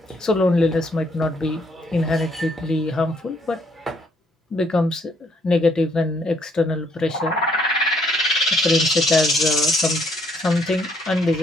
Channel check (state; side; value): normal; both; correlation 0.68